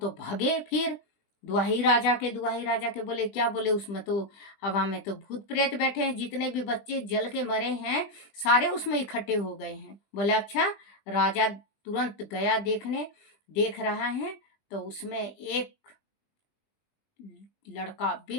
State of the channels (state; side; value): late; right; 20 ms